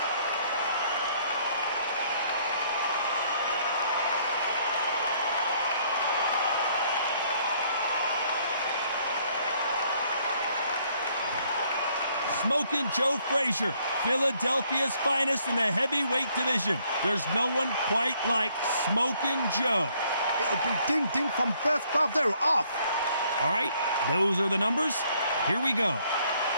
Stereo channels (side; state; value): both; inverted; correlation -0.66